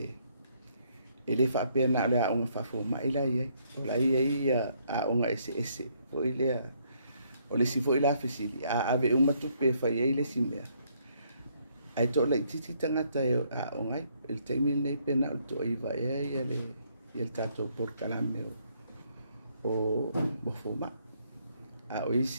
E le whaapea na le aonga whafo mai la iai. O la iai aonga ese. O ile o le si foi la fesili. Ave umatupe whai ei le simea. Ai tō lai titi tangata e o ngai, el teimi nei pena o tō iwa e ia le tātou porkalame o mofoma. O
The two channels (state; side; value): inverted; both; correlation -0.70